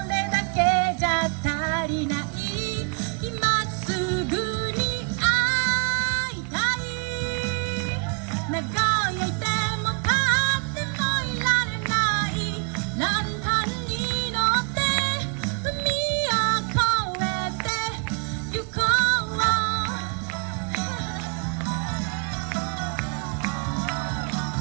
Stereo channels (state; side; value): quieter; left; 39.1 dB